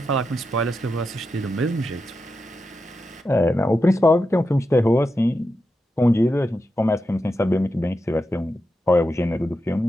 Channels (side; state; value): both; normal; correlation 0.88